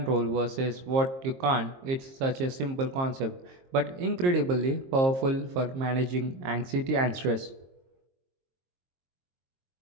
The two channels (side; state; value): left; late; 22 ms